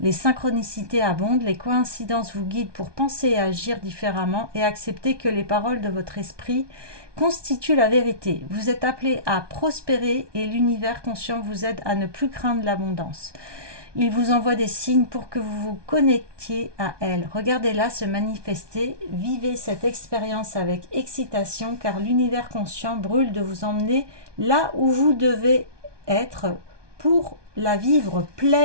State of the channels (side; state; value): left; late; 1.2 ms